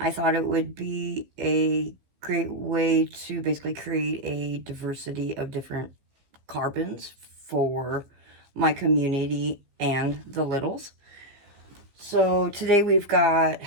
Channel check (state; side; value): late; left; 15 ms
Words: thought it would be a great way to basically create a diversity of different carbons for my community and the littles. So today we've got